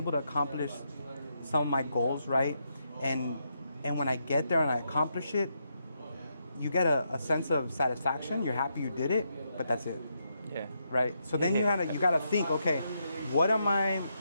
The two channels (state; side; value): inverted; both; correlation -0.81